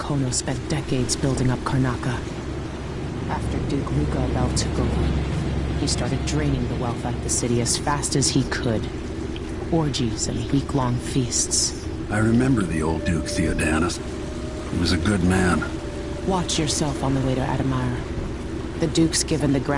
spent decades building up Karnaca. After Duke Luca Bell took over, he started draining the wealth out of the city as fast as he could. Orgies and week-long feasts. I remember the old Duke Theodanis. He was a good man. Watch yourself on the way to Adamire. The Duke's given the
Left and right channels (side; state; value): both; identical; correlation 1.00